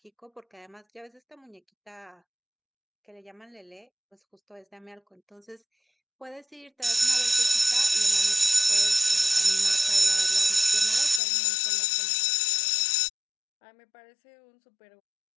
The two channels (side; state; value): right; drops out; at 11.2 s